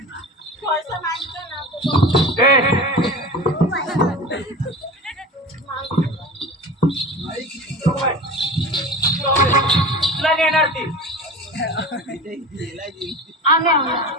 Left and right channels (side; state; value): both; normal; correlation 0.33